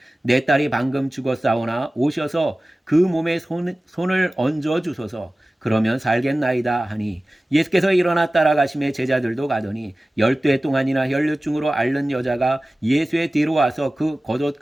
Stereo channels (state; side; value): normal; both; correlation 0.97